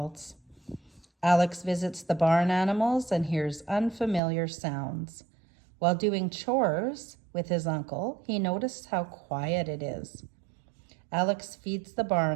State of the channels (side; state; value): left; drops out; at 4.2 s